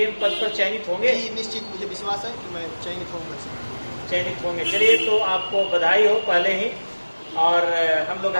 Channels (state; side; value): inverted; both; correlation -1.00